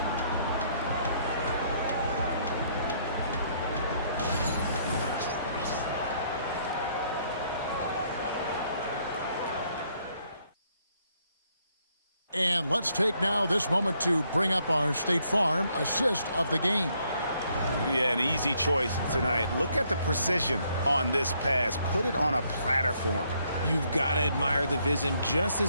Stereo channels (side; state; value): both; inverted; correlation -0.70